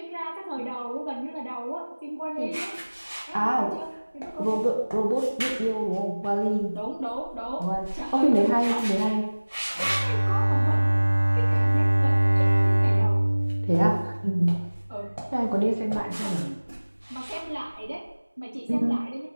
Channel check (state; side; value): inverted; both; correlation -1.00